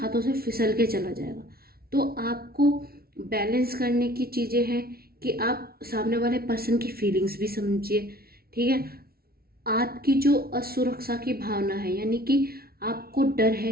से फिसल के चला जाएगा। तो आपको बैलेंस करने की चीज़ें हैं कि आप सामने वाले पर्सन की फीलिंग्स भी समझिए, ठीक है। आपकी जो असुरक्षा की भावना है, यानी कि आपको डर है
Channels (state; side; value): late; left; 0.44 ms